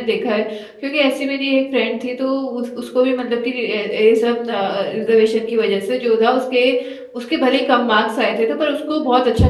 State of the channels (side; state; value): both; identical; correlation 1.00